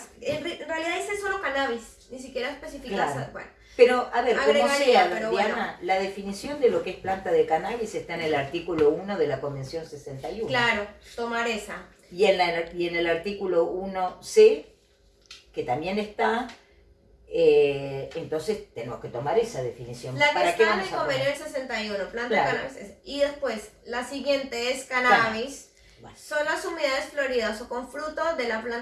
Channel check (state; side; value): identical; both; correlation 1.00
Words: En realidad dice solo cannabis, ni siquiera especifica... Claro. Bueno, Pero, a ver, como agregaría, sea, pero Diana, bueno. la definición de lo que es planta de cannabis está en el artículo 1 de la Convención 61. Claro, tomar esa. Y en el artículo 1C, que también está, entonces tenemos que tomar esa definición. La que ¿Para qué está en vamos el a poner? convenio del 61, planta Claro. de cannabis. Y después, la siguiente es cannabis. Bueno. Son las unidades floridas o con fruto de la